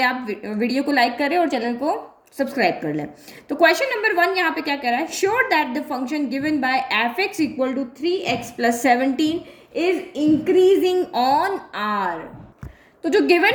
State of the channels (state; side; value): identical; both; correlation 1.00